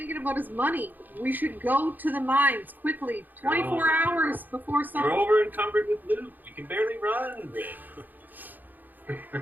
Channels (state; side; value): late; left; 0.086 ms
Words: about is money. We should go to the mines quickly. 24 hours before We're something. over encumbered with loot. We can barely run, Rick.